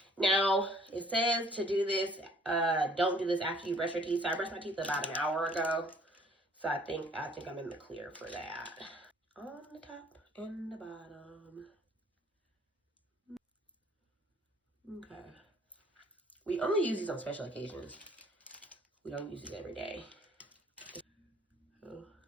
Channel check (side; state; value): both; normal; correlation 0.57